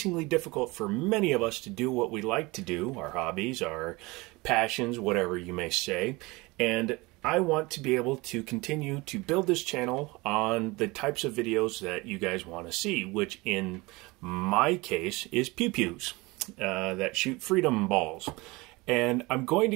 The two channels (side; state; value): left; quieter; 23.4 dB